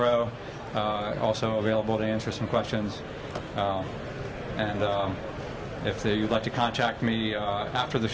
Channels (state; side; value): identical; both; correlation 1.00